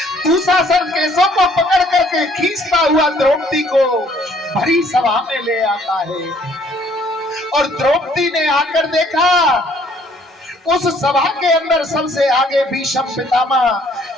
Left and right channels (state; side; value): normal; both; correlation 0.61